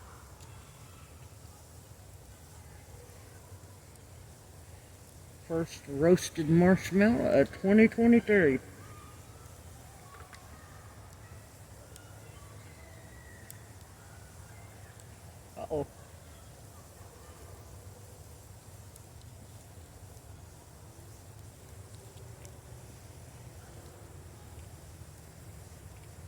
First roasted marshmallow of 2023. Uh-oh.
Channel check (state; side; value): identical; both; correlation 1.00